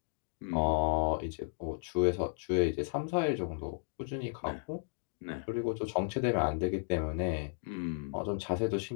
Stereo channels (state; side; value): silent; right; digital silence